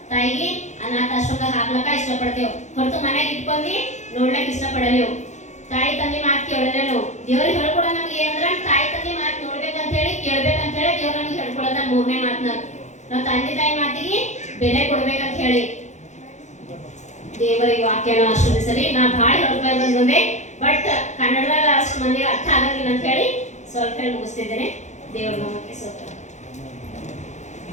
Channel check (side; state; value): right; late; 0.34 ms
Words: ತಾಯಿಗೆ ಅನಾಥಾಶ್ರಮದಾಗ ಹಾಕ್ಲಕ್ಕ ಇಷ್ಟಪಡ್ತೇವೆ, ಹೊರತು ಮನೆಗೆ ಇಟ್ಕೊಂಡಿ ನೋಡ್ಲಕ್ ಇಷ್ಟಪಡಲೇವು. ತಾಯಿ ತಂದೆ ಮಾತು ಕೇಳಲೇವು. ದೇವ್ರಿಗೆ ಹೇಳ್ಕೊಡ ನಮ್ಗೆ ಏನಂದ್ರ ತಾಯಿ ತಂದೆ ಮಾತು ನೋಡ್ಬೇಕಂತ ಹೇಳಿ, ಕೇಳ್ಬೇಕಂತ ಹೇಳಿ ದೇವ್ರ ನಮ್ಗೆ ಹೇಳ್ಕೊಡೋದ ಮೂರನೇ ಮಾತನಾಗ. ನಾವು ತಂದೆ ತಾಯಿ ಮಾತಿಗೆ ಬೆಲೆ ಕೊಡ್ಬೇಕಂತ ಹೇಳಿ ದೇವರಿಗೆ ವಾಕ್ಯನ ಆಶೀರ್ವದಿಸಲಿ. ನಾ ಭಾಳ ಹೇಳ್ಕೊಂಡು ಬಂದೆ, ಬಟ್ ಕನ್ನಡದಾಗ ಅಷ್ಟು ಮಂದಿಗೆ ಅರ್ಥ ಆಗಂಗಿಲ್ಲ ಅಂತ ಹೇಳಿ ಸ್ವಲ್ಪ ಹೇಳಿ ಮುಗಿಸ್ತಿದ್ದೇನೆ. ದೇವ್ರ ನಾಮಕ್ಕೆ ಸ್ತೋತ್ರ.